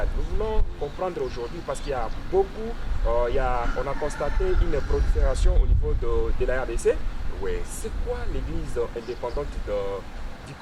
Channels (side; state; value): both; identical; correlation 1.00